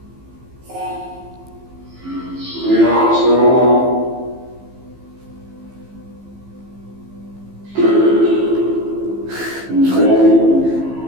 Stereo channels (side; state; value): left; late; 15 ms